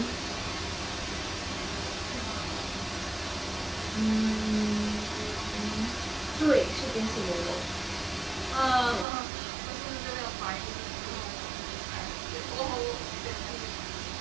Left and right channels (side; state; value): left; drops out; at 9.1 s